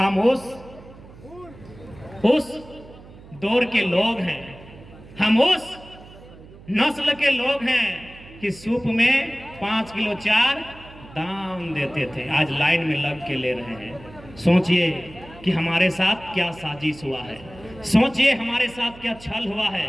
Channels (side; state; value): right; noise; hum, 20 dB below the sound